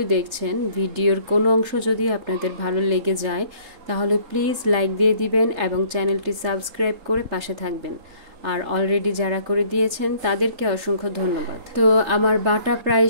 দেখছেন, ভিডিওর কোনো অংশ যদি আপনাদের ভালো লেগে যায় তাহলে প্লিজ লাইক দিয়ে দিবেন এবং চ্যানেলটি সাবস্ক্রাইব করে পাশে থাকবেন। আর অলরেডি যারা করে দিয়েছেন তাদেরকে অসংখ্য ধন্যবাদ। তো আমার বাটা প্রায়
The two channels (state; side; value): late; left; 3.8 ms